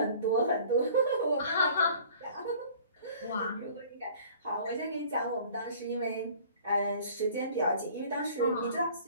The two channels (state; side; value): inverted; both; correlation -0.50